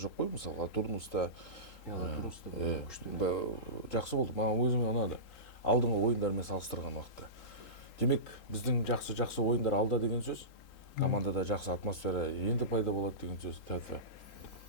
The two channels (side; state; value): right; late; 3.8 ms